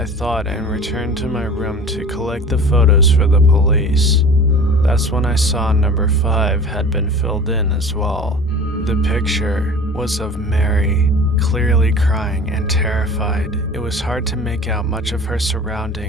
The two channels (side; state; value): both; normal; correlation 0.40